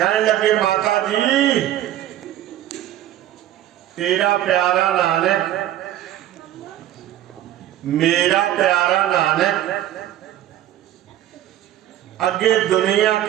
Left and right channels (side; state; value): left; quieter; 12.7 dB